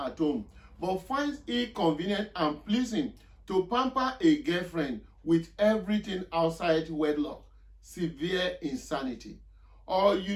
home, but finds it convenient and pleasing to pamper a girlfriend with everything outside wedlock? Severe insanity. Or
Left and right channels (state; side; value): identical; both; correlation 1.00